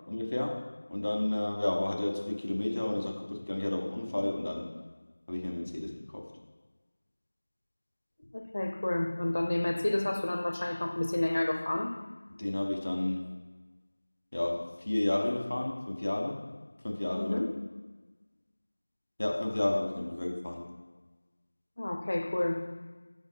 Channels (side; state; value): both; inverted; correlation -1.00